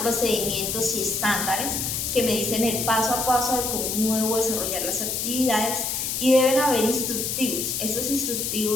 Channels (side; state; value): left; noise; hiss, 1 dB below the sound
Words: procedimientos y estándares que me dicen el paso a paso de cómo debo desarrollar las actividades, y deben haber instructivos. Estos